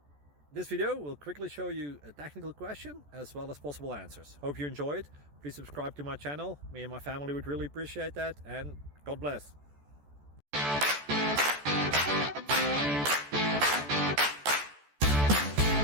this video will quickly show you a technical question as well as possible answers. Hope you enjoyed. Please subscribe to my channel. Me and my family would really appreciate that, and God bless.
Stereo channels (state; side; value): late; left; 14 ms